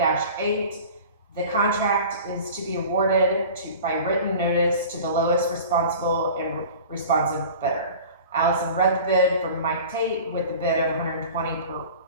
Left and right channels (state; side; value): inverted; both; correlation -0.40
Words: The contract is to be awarded by written notice to the lowest responsible and responsive bidder. Allison read the bid from Mike Tate with the bid of $120